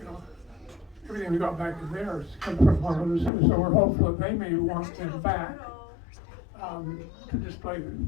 everything we got back in there is come from one of the zoos. So we're hopeful that they may want them back to display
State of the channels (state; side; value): drops out; right; at 3.3 s